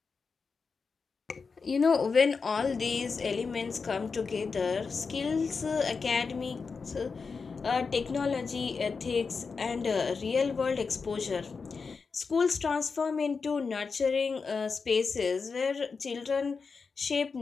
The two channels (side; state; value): right; quieter; 5.0 dB